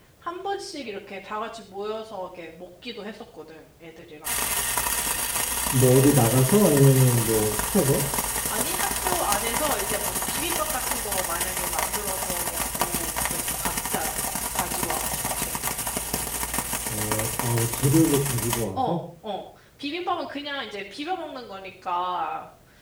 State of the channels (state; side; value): identical; both; correlation 1.00